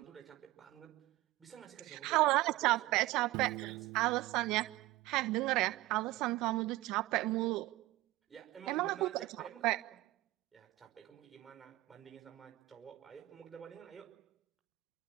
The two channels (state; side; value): quieter; left; 18.2 dB